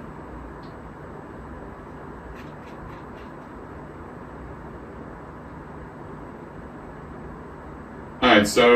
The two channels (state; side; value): identical; both; correlation 1.00